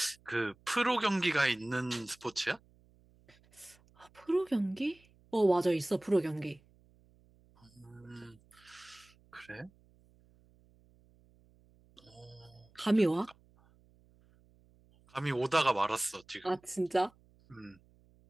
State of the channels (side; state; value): right; noise; hum, 30 dB below the sound